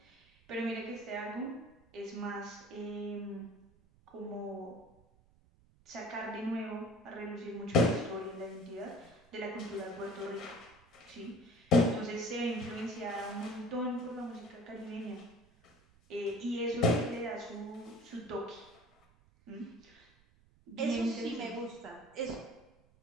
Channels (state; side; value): noise; right; rumble, 29 dB below the sound